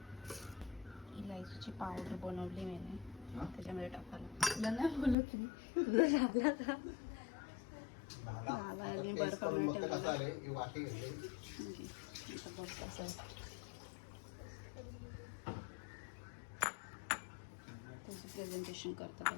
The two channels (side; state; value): right; drops out; at 5.2 s